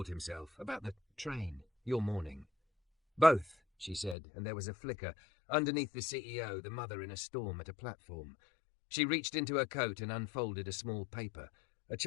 himself. About the train. Your morning. Both, she said, and there was a flicker. Underneath the CEO, the mother in a storm at a platform. She reached into her coat and unfolded a small paper. A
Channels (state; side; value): drops out; right; at 4.2 s